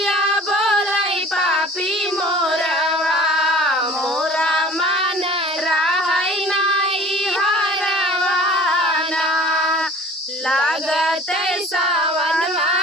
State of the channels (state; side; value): normal; both; correlation 0.46